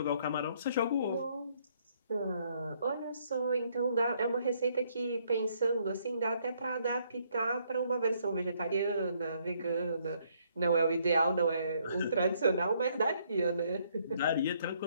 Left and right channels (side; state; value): both; inverted; correlation -0.69